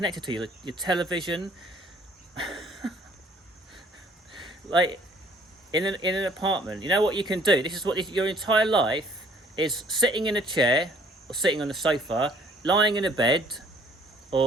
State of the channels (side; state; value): both; normal; correlation 0.58